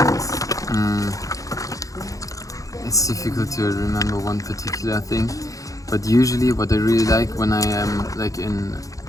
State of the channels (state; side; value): late; right; 0.16 ms